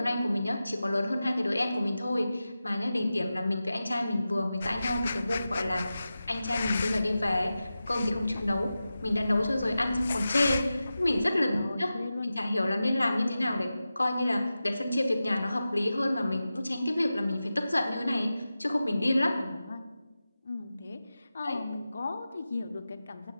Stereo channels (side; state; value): both; inverted; correlation -0.94